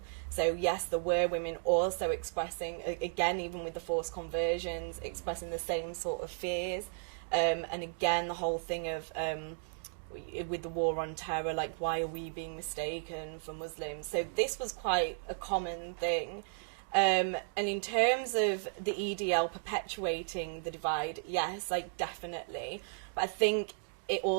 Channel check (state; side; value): silent; left; digital silence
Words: So yes, there were women also expressing, again, even with the forced conversions, expressing the same sort of fears. And again, the whole thing of, with the war on terror, why are we being mistaken for Muslims? So this was quite a common thing. And in terms of the EDL perpetuating the divide, yes, definitely. But I think it